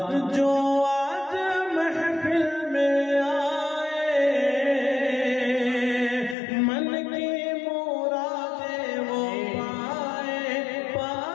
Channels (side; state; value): right; drops out; at 6.4 s